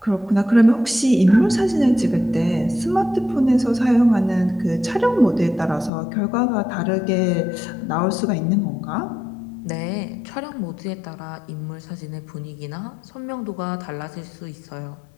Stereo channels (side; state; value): right; drops out; at 5.9 s